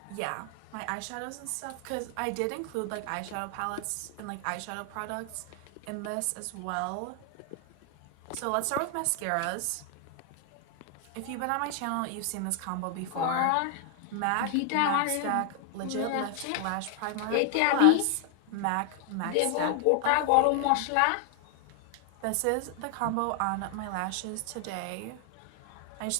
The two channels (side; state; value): both; different; correlation 0.00